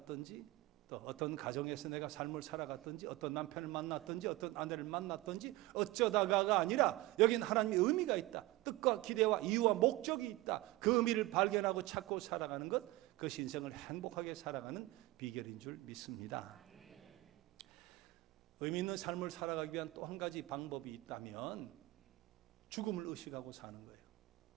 또 어떤 가정에서 내가 삶을 살아갔든지, 어떤 남편을 만났든지, 어떤 아내를 만났든지, 어쩌다가가 아니라 여긴 하나님의 의미가 있다. 뜻과 기대와 이유와 목적이 있다. 그 의미를 발견하고 찾고 살아가는 것, 그것이 인생을 행복하게 살아가는 비결인 줄 믿습니다. 의미 있는 삶을 살아가기 위한 또 한 가지 방법이 있다면 죽음을 의식하고 사는 거예요.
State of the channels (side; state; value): left; quieter; 18.9 dB